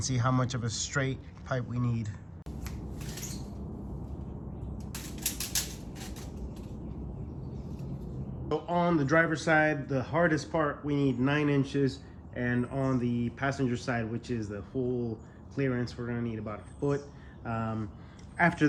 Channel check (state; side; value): identical; both; correlation 1.00